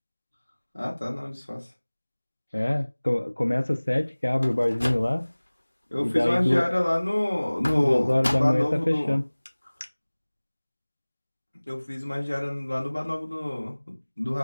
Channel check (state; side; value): inverted; both; correlation -1.00